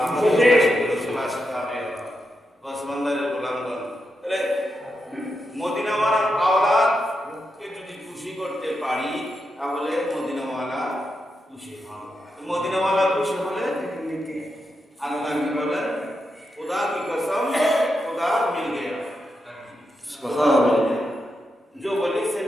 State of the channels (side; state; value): both; normal; correlation 0.86